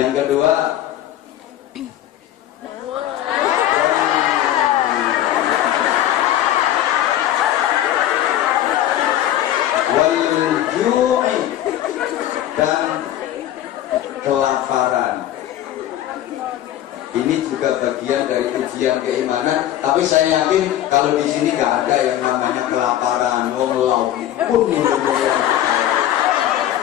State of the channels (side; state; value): right; quieter; 12.4 dB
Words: kedua, wal-ju'i, dan kelaparan. Ini juga bagian dari ujian keimanan. Tapi saya yakin kalau di sini nggak ada yang namanya kelaparan. Wong lauk pun